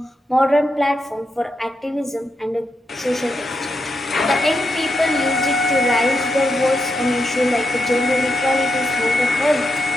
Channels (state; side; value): normal; both; correlation 0.83